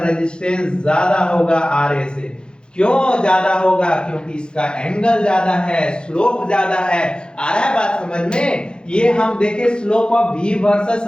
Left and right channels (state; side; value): late; right; 0.049 ms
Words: ज्यादा होगा RA से, क्यों ज्यादा होगा, क्योंकि इसका एंगल ज्यादा है, स्लोप ज्यादा है, आ रहा है बात समझ में। ये हम देखे slope of v